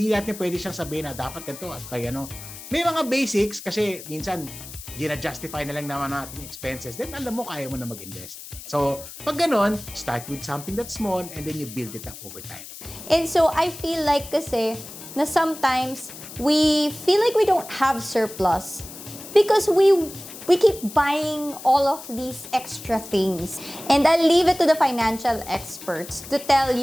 natin pwede siyang sabihin na dapat ganito at kaya may mga basics kasi minsan, gina-justify na lang naman natin yung expenses, then alam mo, kaya mo na mag-invest. So, pag ganon, start with something that's small and then you build it up over time. And so, I feel like kasi na sometimes we feel like we don't have surplus because we keep buying all of these extra things. And I'll leave it to the financial experts to tell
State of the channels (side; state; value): left; noise; hiss, 14 dB below the sound